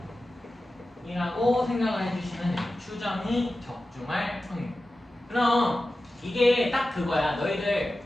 이라고 생각을 해주시면 돼요. 추정이 적중할 확률. 그럼 이게 딱 그거야. 너희들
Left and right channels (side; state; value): both; normal; correlation 0.94